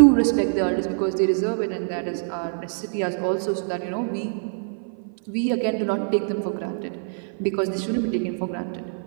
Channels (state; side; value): silent; left; 56 dB below the other